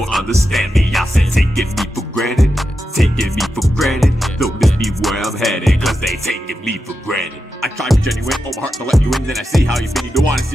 understand me. I said taking me for granted, taking me for granted, they'll miss me where I'm headed, cause they taking me for granted. I try to be genuine, open my heart to let you in, then I see how you've been. You don't wanna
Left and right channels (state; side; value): normal; both; correlation 0.89